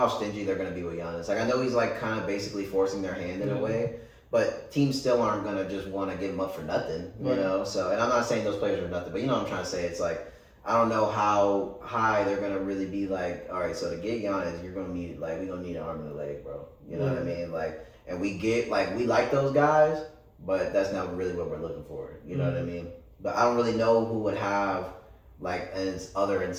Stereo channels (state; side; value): identical; both; correlation 1.00